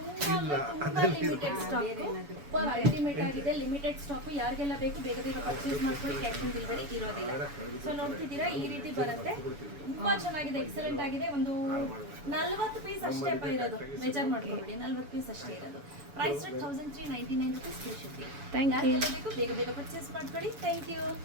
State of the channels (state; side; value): late; left; 7.0 ms